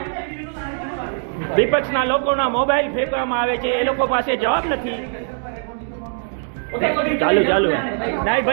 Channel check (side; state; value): left; silent; digital silence